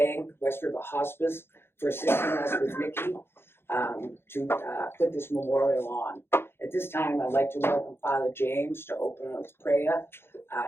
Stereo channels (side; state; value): right; late; 0.11 ms